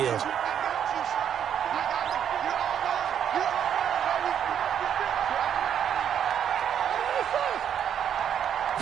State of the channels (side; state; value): left; quieter; 8.9 dB